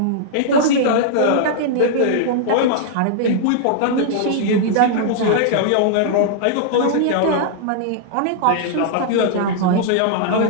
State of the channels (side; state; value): both; different; correlation -0.01